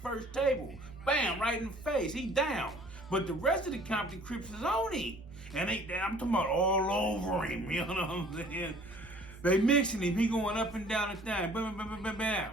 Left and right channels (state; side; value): normal; both; correlation 0.53